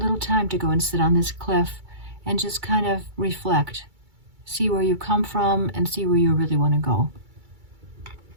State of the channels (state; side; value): late; left; 2.3 ms